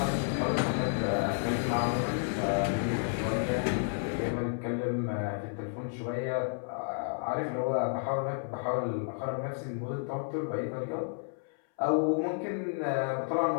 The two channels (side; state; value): right; silent; 57 dB below the other